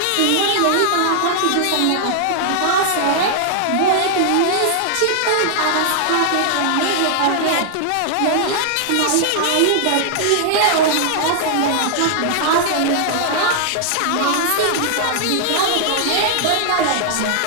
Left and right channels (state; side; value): different; both; correlation -0.01